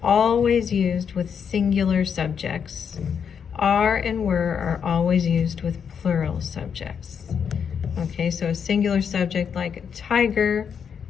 always used with singular subjects. Are and were are always used with plural subjects. Okay, so a singular subject like tiger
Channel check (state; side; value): quieter; right; 7.2 dB